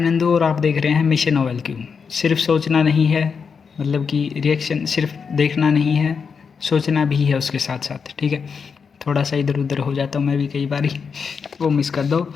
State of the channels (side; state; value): right; quieter; 5.9 dB